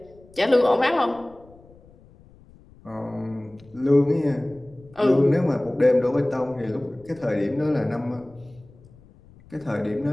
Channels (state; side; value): noise; left; rumble, 25 dB below the sound